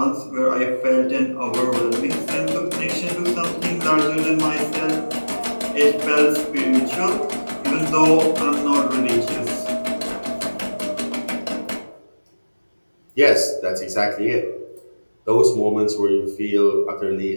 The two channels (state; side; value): inverted; both; correlation -1.00